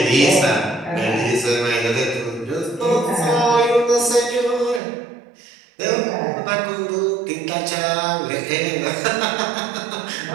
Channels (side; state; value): left; drops out; at 4.8 s